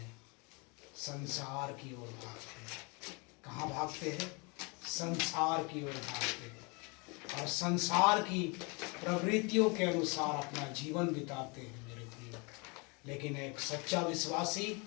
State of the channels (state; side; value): quieter; right; 30.4 dB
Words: संसार की ओर भागते हैं। कहाँ भागते हैं? संसार की ओर भागते हैं और संसार की प्रवृत्तियों के अनुसार अपना जीवन बिताते हैं मेरे प्रिय। लेकिन एक सच्चा विश्वासी